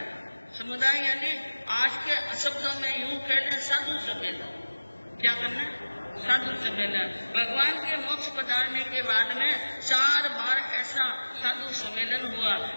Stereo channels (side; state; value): both; inverted; correlation -1.00